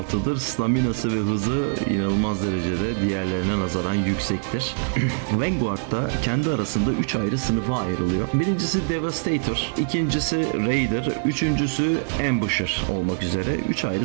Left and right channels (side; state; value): left; silent; 63 dB below the other